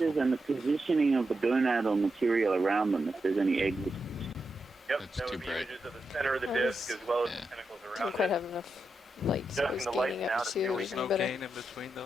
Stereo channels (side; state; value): both; normal; correlation 0.87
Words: and the positioning of the gonadal material around them, if there's any eggs. Yep, that would be images of the center of the disc as well as the tentacles around Don't quite have enough Light, so Adjusting it's the lights gaining now up to to see what we There's can no better. gain in between